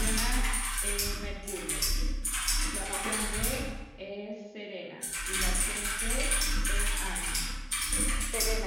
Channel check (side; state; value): both; identical; correlation 1.00